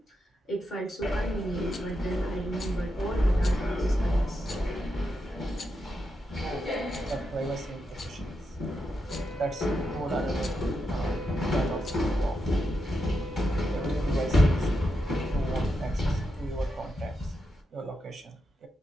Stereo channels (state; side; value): normal; both; correlation 0.85